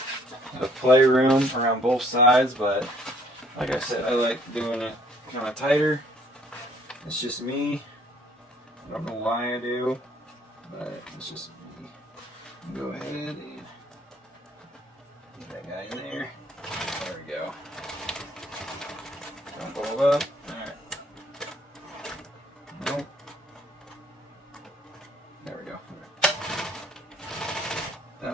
of playroom around both sides. But like I said, I like doing it kind of tighter. It's just me. I don't know why I do, but it's just me. Go ahead and get that guy in there. There we go. Don't blow up. Alright. Nope. There we go. Right.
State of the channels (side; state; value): both; normal; correlation 0.61